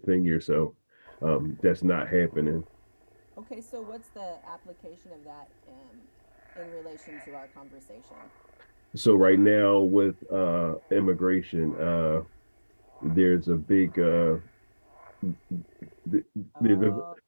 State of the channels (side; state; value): both; inverted; correlation -1.00